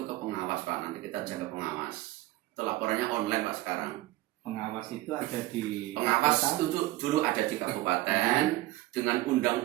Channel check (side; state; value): left; quieter; 17.8 dB